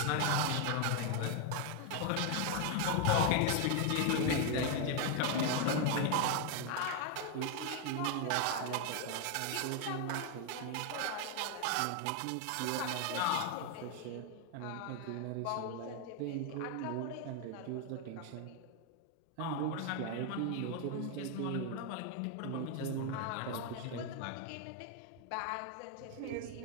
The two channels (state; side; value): different; both; correlation 0.01